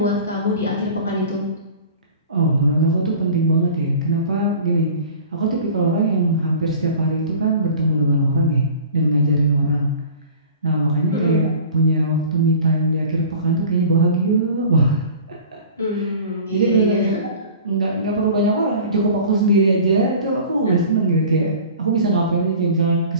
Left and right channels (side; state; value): both; inverted; correlation -0.42